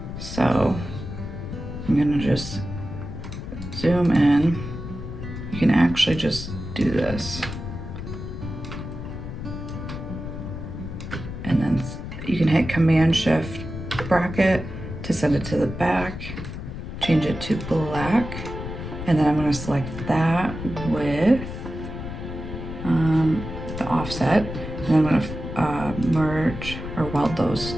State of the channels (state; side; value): noise; left; rumble, 8 dB below the sound